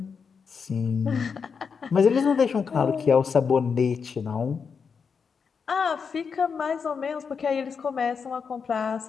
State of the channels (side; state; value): right; quieter; 5.9 dB